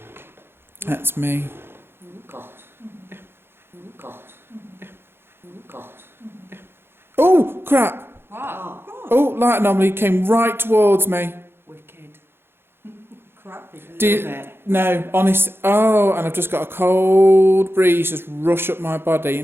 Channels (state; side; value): late; left; 0.11 ms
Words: That's me. Oh God. Oh God. Oh God. Oh, crap. Wow. Oh, light anomaly came right towards me. Wicked. Crap. No, honest. Oh, and I've just got a cold breeze just rush up my body.